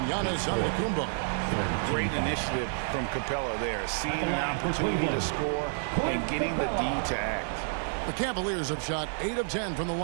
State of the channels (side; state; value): left; silent; digital silence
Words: Giannis Antetokounmpo. Great initiative from Capella there. Seeing an opportunity to score and getting the D to act. The Cavaliers have shot 8 of 10 from the